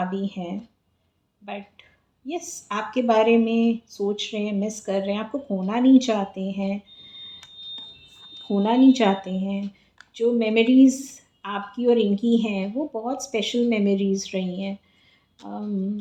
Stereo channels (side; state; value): both; identical; correlation 1.00